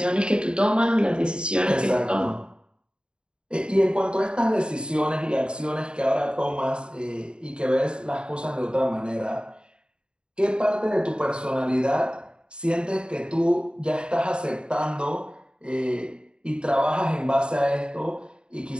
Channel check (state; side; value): late; left; 0.050 ms